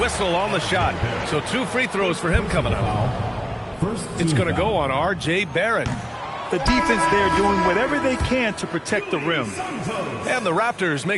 whistle on the shot. So 2 free throws for him coming up. It's going to go on R.J. Barrett. The defense there doing whatever they can to protect the rim. And the Raptors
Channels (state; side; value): identical; both; correlation 1.00